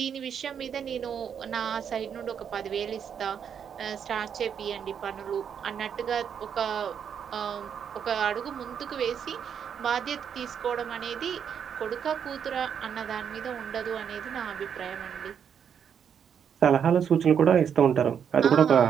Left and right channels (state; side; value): quieter; left; 7.9 dB